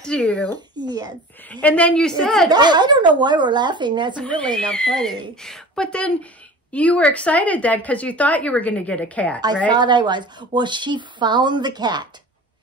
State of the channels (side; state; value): both; normal; correlation 0.39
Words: to you. Yes. And then you said... I don't know why we're laughing. That's really not funny. But then you were excited then because you thought you were going to get a cat, right? I thought I was. Well, she found the cat.